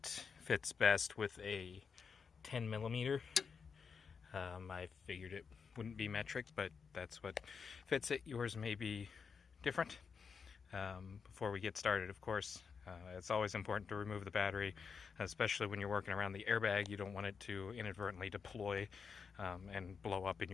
fits best with a 10 millimeter. I figured it wouldn't be metric, but that's what fits it. Yours may be different. Before we get started, of course, it's always important to remove the battery, especially when you're working around the airbag. You don't want it to inadvertently deploy and blow up in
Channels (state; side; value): quieter; right; 5.9 dB